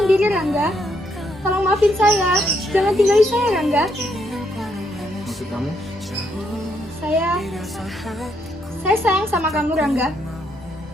Rangga. Tolong maafin saya. Jangan tinggalin saya, Rangga. Maksud kamu? Saya sayang sama kamu, Rangga.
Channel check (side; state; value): both; normal; correlation 0.75